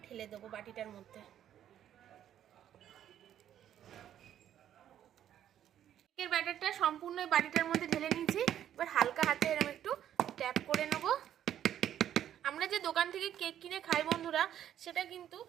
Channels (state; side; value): quieter; left; 10.7 dB